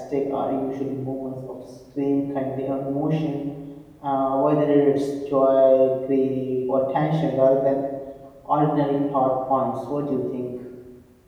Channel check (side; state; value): both; identical; correlation 1.00